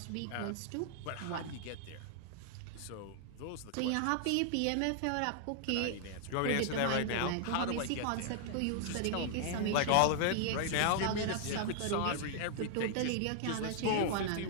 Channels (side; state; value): both; different; correlation 0.00